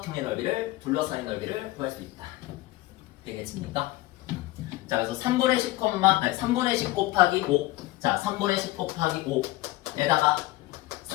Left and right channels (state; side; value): quieter; right; 18.0 dB